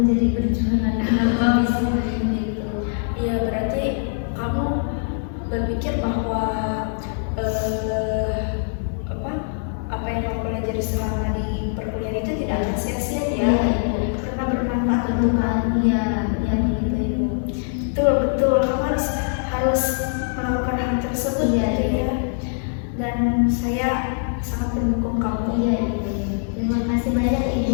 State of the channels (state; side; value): silent; right; 64 dB below the other